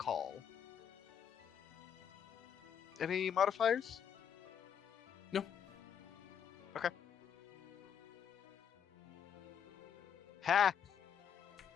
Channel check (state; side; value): quieter; right; 8.1 dB